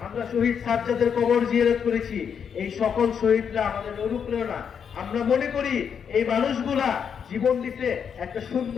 আমরা শহীদ সাজ্জাদের কবর জিয়ারত করেছি। এই সকল শহীদরা আমাদের অনুপ্রেরণা। আমরা মনে করি এই মানুষগুলা জীবন দিতে একটা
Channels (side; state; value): right; quieter; 7.3 dB